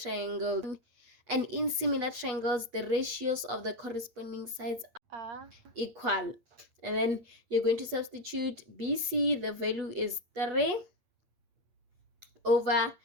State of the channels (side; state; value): left; late; 8.6 ms